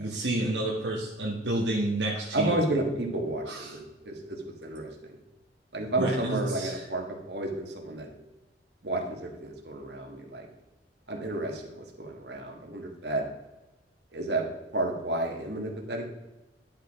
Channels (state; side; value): normal; both; correlation 0.28